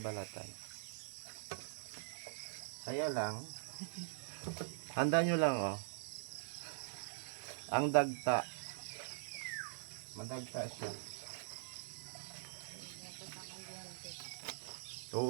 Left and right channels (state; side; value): silent; left; digital silence